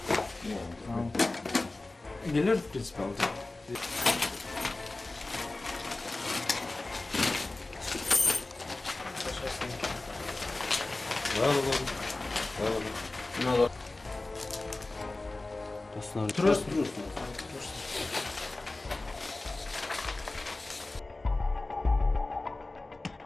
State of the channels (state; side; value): quieter; right; 3.0 dB